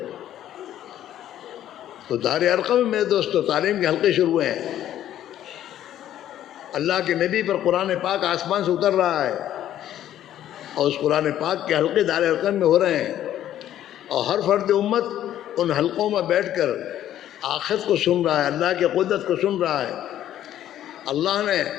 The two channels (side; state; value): right; quieter; 11.8 dB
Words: تو دار ارقم میں میرے دوستو تعلیم کے حلقے شروع ہوئے ہیں. اللہ کے نبی پر قرآن پاک آسمان سے اتر رہا ہے، اور اس قرآن پاک کے حلقے دار ارقم میں ہو رہے ہیں، اور ہر فرد امت ان حلقوں میں بیٹھ کر آخرت کو سن رہا ہے، اللہ کی قدرت کو سن رہا ہے. اللہ نے